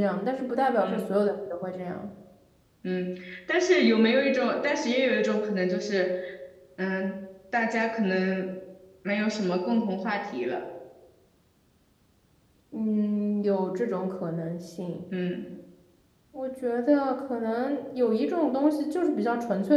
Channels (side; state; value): both; identical; correlation 1.00